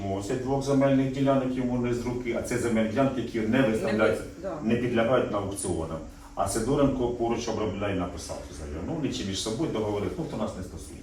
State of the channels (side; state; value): both; identical; correlation 1.00